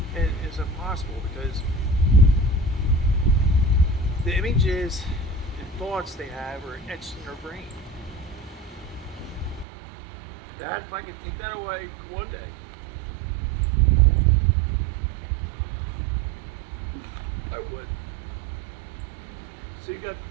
And it's impossible because the images and thoughts they have are etched in their brain. Dad, if I could take that away one day, I would. So you got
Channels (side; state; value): left; drops out; at 9.7 s